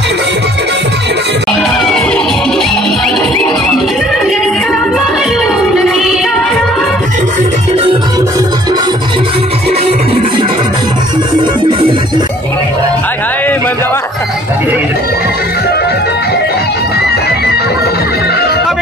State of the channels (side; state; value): both; normal; correlation 0.56